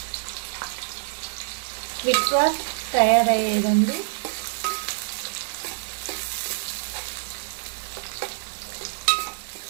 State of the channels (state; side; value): silent; left; digital silence